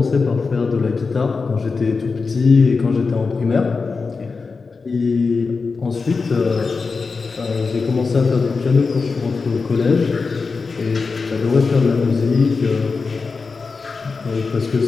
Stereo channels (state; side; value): quieter; right; 4.5 dB